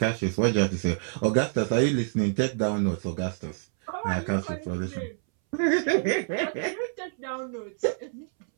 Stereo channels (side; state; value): left; silent; 60 dB below the other